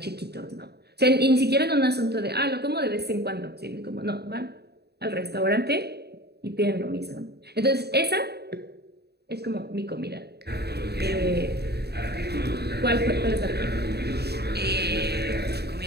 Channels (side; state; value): left; late; 0.48 ms